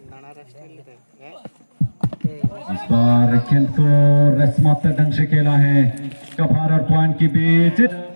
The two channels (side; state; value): both; inverted; correlation -1.00